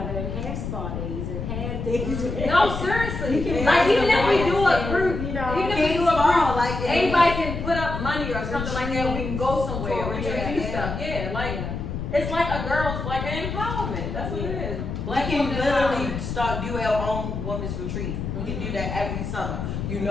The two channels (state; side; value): noise; left; rumble, 5 dB below the sound